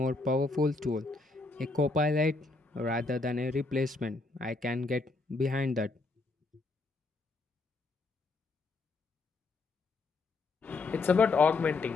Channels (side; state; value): right; quieter; 3.5 dB